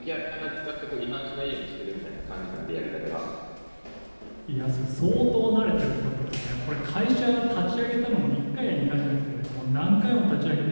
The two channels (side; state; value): both; inverted; correlation -1.00